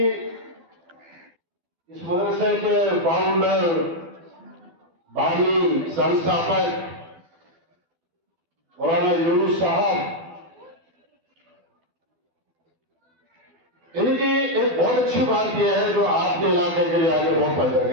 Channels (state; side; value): late; left; 12 ms